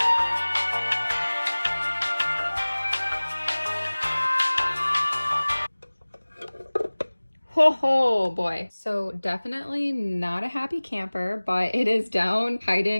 Oh boy. So definitely not a happy camper, but it is down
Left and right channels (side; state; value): both; inverted; correlation -1.00